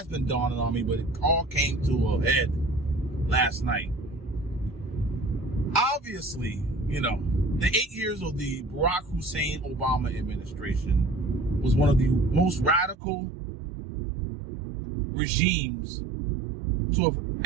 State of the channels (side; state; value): left; drops out; at 13.0 s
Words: been dawning on me, but it all came to a head last night. Obviously, you know, the 8 years of the Barack Hussein Obama administration was one of the most radical regimes to have